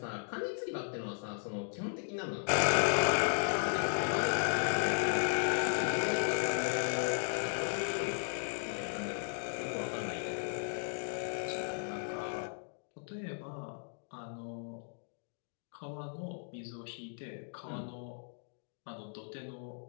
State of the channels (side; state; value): right; silent; digital silence